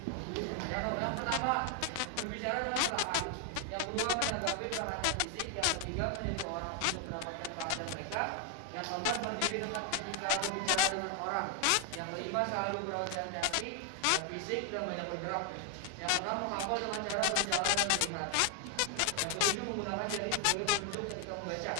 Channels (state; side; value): different; both; correlation 0.00